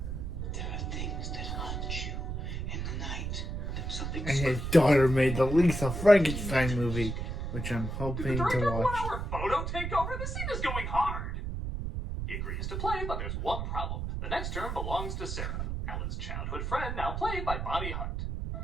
are things that haunt you in the night. There's something And his daughter made the Lisa Frankenstein movie, which I'm Did hoping the to director watch. 1 hour photo take over? This scene is going hard. He agrees to play, but there's one problem. The next term belongs to Sarah, Alan's childhood friend, now played by Bonnie Hunt.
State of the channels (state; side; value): noise; right; rumble, 3 dB below the sound